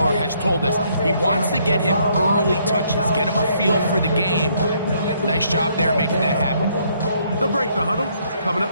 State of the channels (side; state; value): both; inverted; correlation -0.69